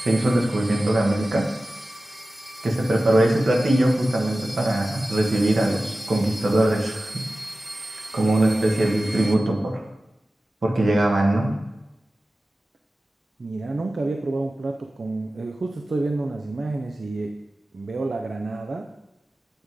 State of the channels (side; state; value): both; normal; correlation 0.95